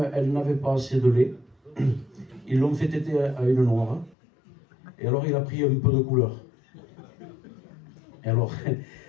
elle n'avait pas assez de lait, ils l'ont fait téter à une noire. Et alors il a pris un peu de couleur. Et alors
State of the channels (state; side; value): drops out; right; at 4.2 s